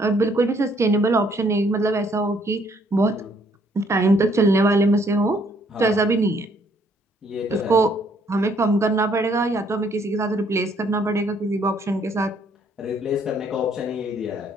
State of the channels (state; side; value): normal; both; correlation 0.66